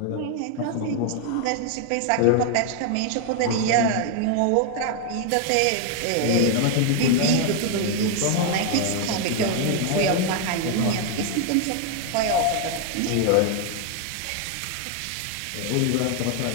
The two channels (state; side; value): different; both; correlation 0.00